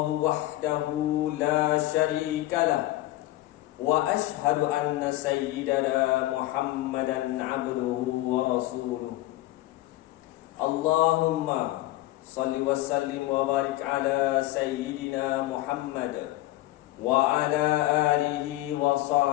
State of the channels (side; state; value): right; quieter; 16.8 dB